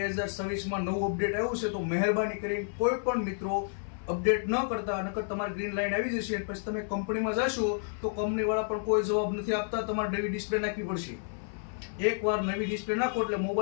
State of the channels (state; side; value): silent; right; 56 dB below the other